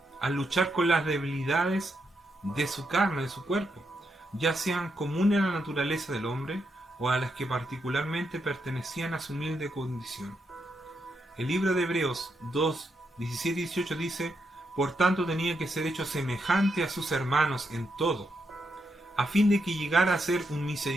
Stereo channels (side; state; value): both; normal; correlation 0.82